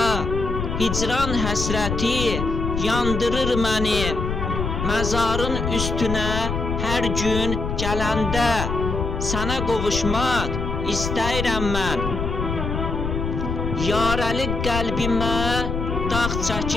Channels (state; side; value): noise; left; rumble, 3 dB below the sound